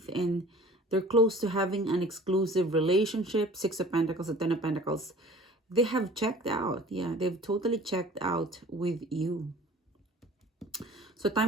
and they're close to having an exclusive relationship. 6 of Pentacles and 10 of Pentacles. They have checked out. Yeah, they've totally checked out with you. So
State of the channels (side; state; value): both; normal; correlation 0.46